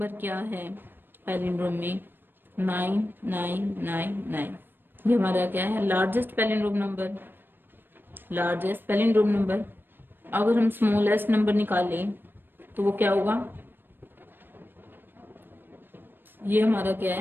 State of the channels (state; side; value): late; left; 0.096 ms